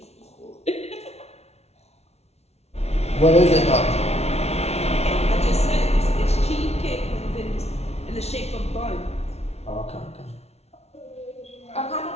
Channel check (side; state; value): right; late; 0.31 ms